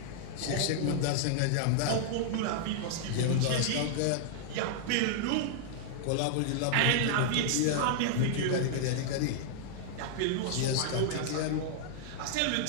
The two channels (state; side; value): different; both; correlation -0.01